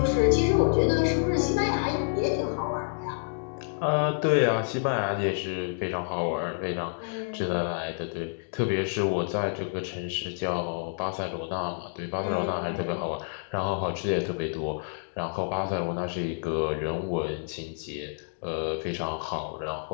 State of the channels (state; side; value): silent; right; digital silence